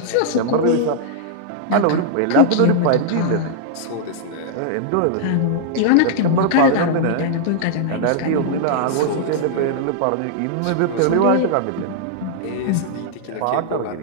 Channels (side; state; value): both; different; correlation -0.01